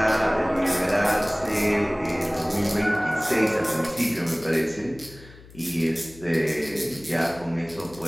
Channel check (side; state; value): left; noise; hum, 21 dB below the sound